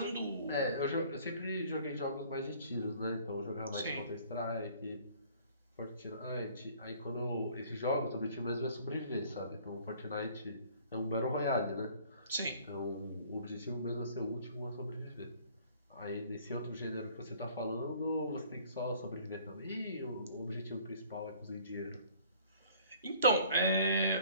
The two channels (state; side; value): inverted; both; correlation -0.54